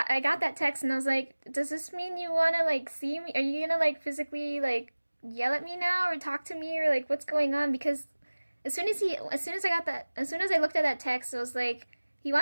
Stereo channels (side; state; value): both; inverted; correlation -1.00